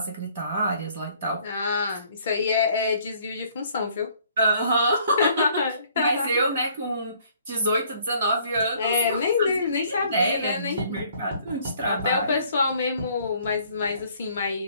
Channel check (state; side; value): inverted; both; correlation -0.60